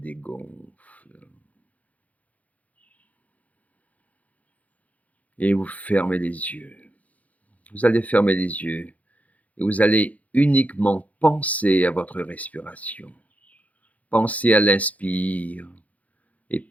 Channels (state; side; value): late; right; 0.071 ms